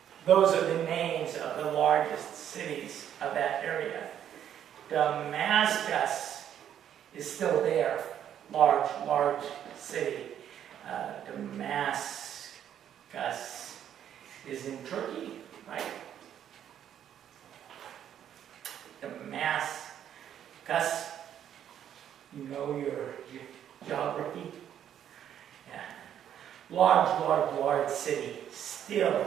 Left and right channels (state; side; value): quieter; left; 9.9 dB